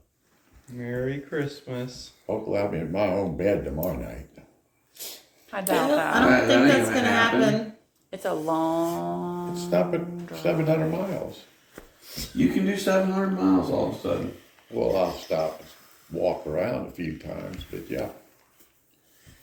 Merry Christmas. Hopefully I'll be in my own bed tomorrow night. I doubt I that. don't That think ain't that's gonna gonna happen. It's a long. It's not 700 miles. You can do 700 miles all of a sudden. Well, I'll stop and walk around a few times, but yeah.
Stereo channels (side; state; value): both; identical; correlation 1.00